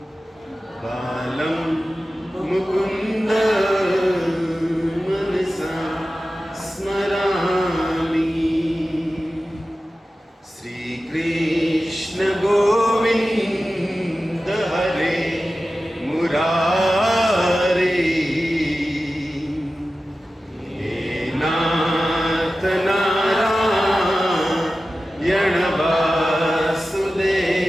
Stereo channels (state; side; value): normal; both; correlation 0.94